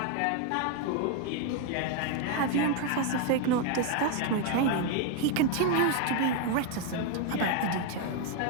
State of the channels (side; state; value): both; different; correlation 0.01